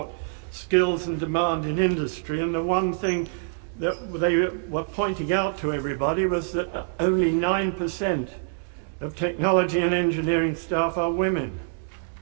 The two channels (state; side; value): silent; left; digital silence